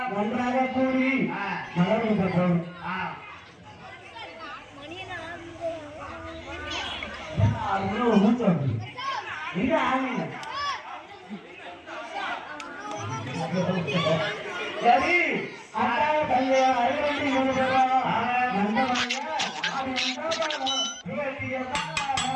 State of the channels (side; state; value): both; identical; correlation 1.00